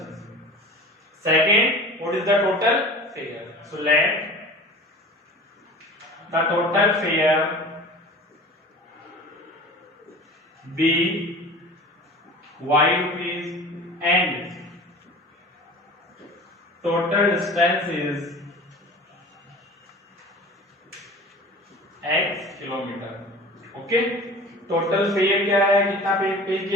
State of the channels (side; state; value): both; normal; correlation 0.38